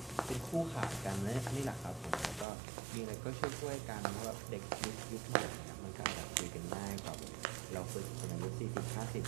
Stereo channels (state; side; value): drops out; left; at 2.5 s